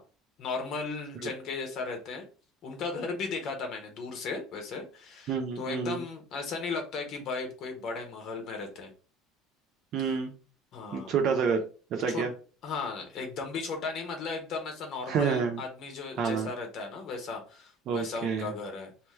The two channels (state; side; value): normal; both; correlation 0.46